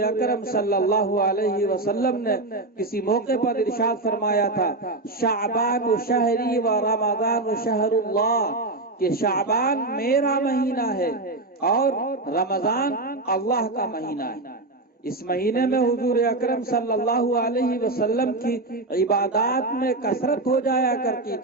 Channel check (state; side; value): quieter; left; 3.0 dB